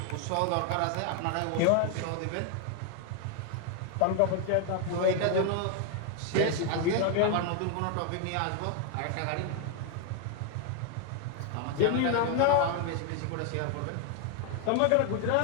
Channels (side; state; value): both; different; correlation 0.01